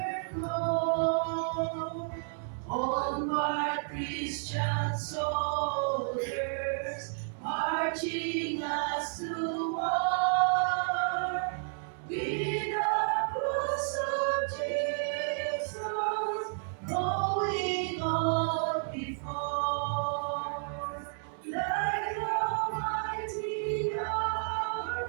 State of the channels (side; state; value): left; silent; digital silence